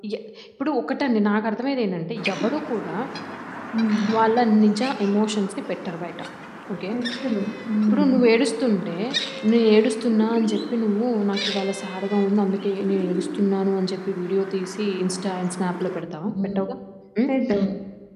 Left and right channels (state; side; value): identical; both; correlation 1.00